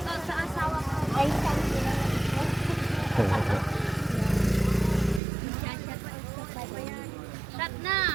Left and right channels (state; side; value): drops out; left; at 5.2 s